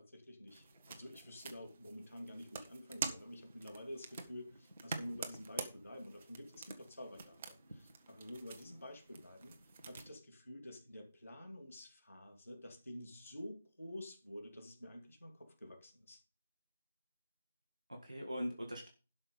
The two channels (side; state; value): both; inverted; correlation -0.84